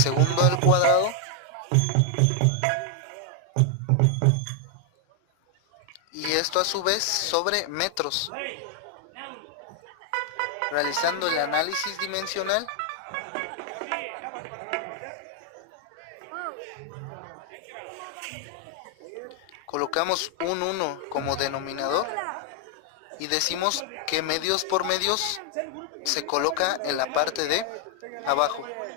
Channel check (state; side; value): different; both; correlation 0.00